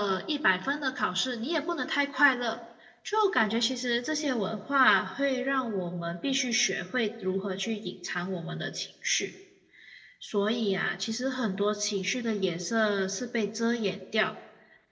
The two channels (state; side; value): identical; both; correlation 1.00